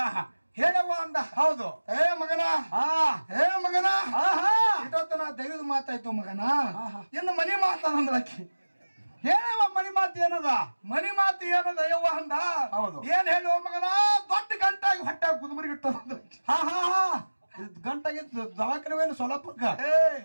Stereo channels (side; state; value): both; inverted; correlation -1.00